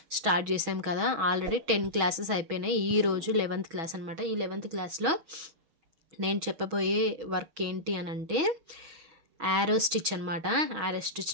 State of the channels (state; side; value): late; left; 6.2 ms